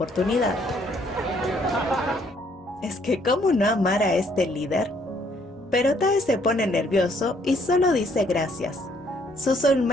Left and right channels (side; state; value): both; normal; correlation 0.66